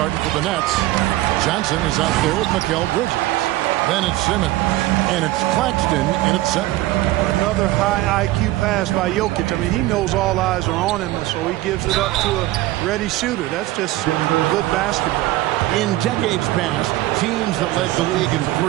for the Nets. Johnson is out there with Mikal Bridges. Then it's Simmons. And it's Claxton in at center. Another high IQ pass by Jokic. I mean, he knows all eyes are on him, so he gives it up to a ready shooter. That's just good basketball. In decades past, teams that led the league in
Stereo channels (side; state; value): left; quieter; 16.9 dB